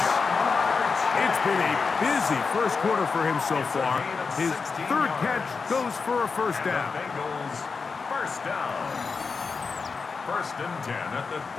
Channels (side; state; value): right; quieter; 4.9 dB